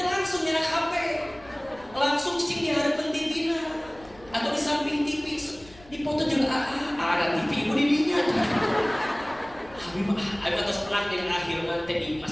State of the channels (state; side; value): noise; left; rumble, 23 dB below the sound